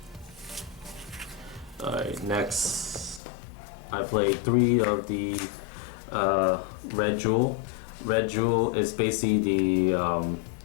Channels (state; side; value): drops out; right; at 3.2 s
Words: Alright, next I played 3 of the Red Jewel. Red Jewel is basically the